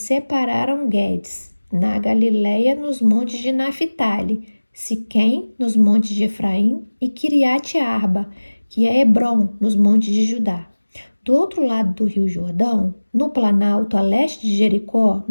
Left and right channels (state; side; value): inverted; both; correlation -1.00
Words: Guedes, na Galileia, nos montes de Naphtali, Siquém, nos montes de Efraim, e Kiriate Arba, que é Hebrom, nos montes de Judá. Do outro lado do rio Jordão, no planalto a leste de Jericó,